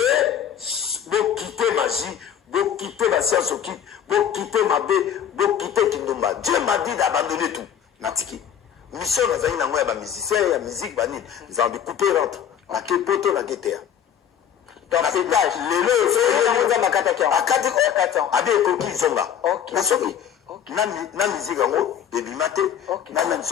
vous quittez magie, vous quittez la science occulte, vous quittez ma bé, vous quittez Kindumba. Dieu m'a dit d'abandonner tout. Natiki. Mission na zaina ngoya ba musicien ya musique banine. Ils ont découpé rentre. Na ke poto na ketea. Donc pétage. Lelo c'est un makata qui akati abi ekoki zonga. Na soki na musique yango ebimate na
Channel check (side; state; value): right; quieter; 9.1 dB